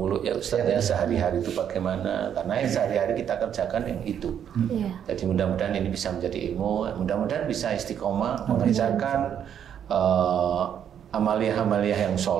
ya Ustaz ya, sehari-hari itu bagaimana, karena yang sehari-hari kita kerjakan yang itu. Jadi mudah-mudahan ini bisa menjadi ilmu, mudah-mudahan bisa istiqomah mengerjakan amaliyah-amaliyah yang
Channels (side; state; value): left; quieter; 9.0 dB